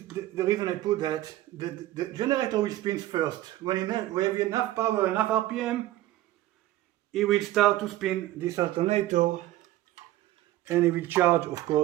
the reason I put that, the generator will spin first. When we have enough power, enough RPM, it will start to spin this alternator, and it will charge, of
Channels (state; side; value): quieter; left; 15.5 dB